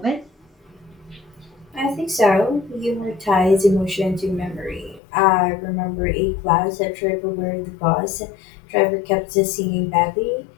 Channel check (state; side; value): drops out; right; at 5.0 s